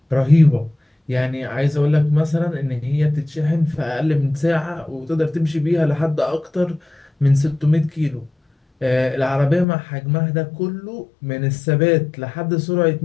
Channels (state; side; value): drops out; right; at 9.7 s